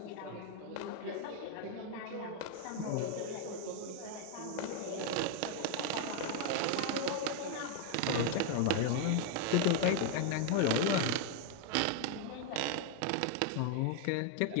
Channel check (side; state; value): both; different; correlation 0.00